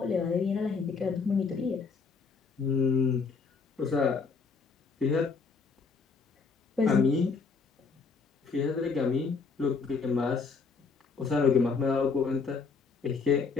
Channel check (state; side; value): quieter; right; 4.9 dB